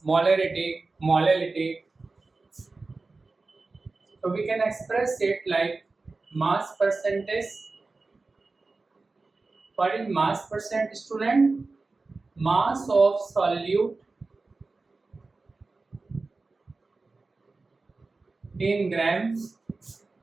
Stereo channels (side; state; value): left; quieter; 3.7 dB